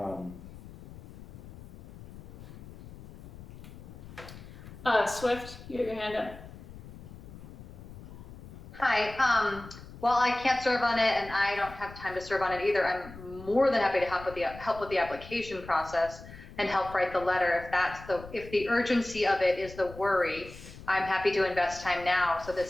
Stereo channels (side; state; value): left; noise; rumble, 15 dB below the sound